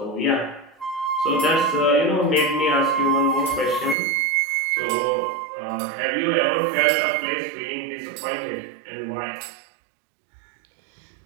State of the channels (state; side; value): drops out; left; at 4.0 s